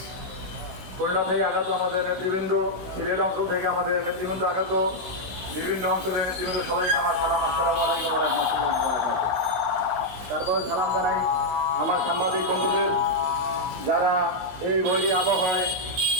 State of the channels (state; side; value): late; left; 16 ms